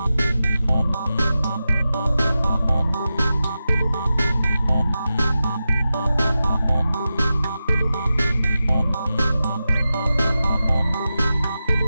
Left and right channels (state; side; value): inverted; both; correlation -0.92